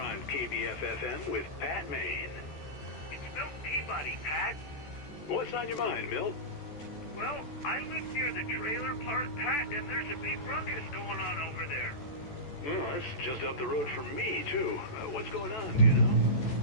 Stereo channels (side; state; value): right; late; 14 ms